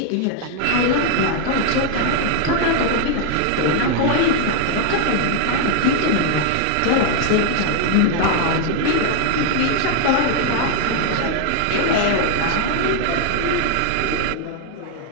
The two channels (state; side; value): different; both; correlation 0.00